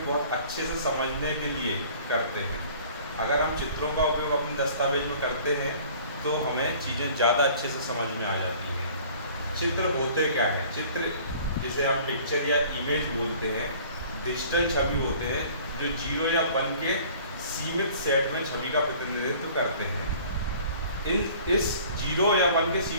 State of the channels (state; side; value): inverted; both; correlation -0.50